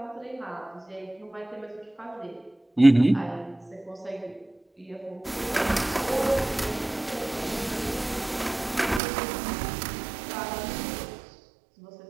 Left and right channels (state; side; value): drops out; left; at 9.0 s